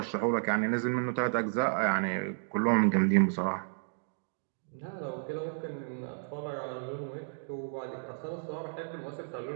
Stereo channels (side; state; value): left; silent; digital silence